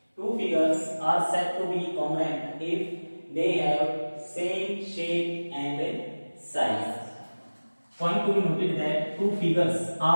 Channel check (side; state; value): both; inverted; correlation -1.00